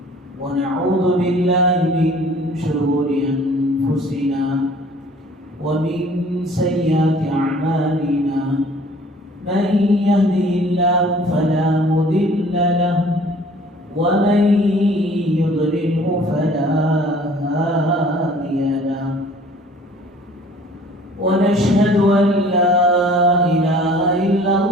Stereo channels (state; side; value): normal; both; correlation 0.52